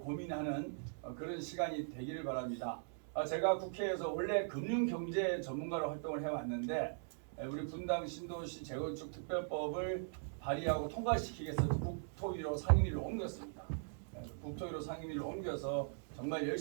그런 시간이 되기를 바랍니다. 제가 국회에서 원래 금융경제 전문가로 활동을 해왔는데 우리 분당 신도시 재건축 특별법을 발의하고 통과시키기 위해서 국토위로 상임위를 옮겼습니다. 국토위로 상임위를 옮겨서 정말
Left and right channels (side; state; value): left; silent; digital silence